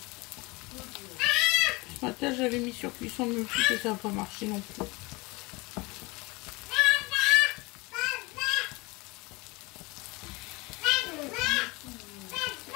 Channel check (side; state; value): right; quieter; 24.7 dB